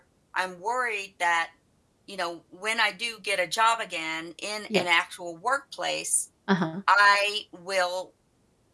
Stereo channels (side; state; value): both; identical; correlation 1.00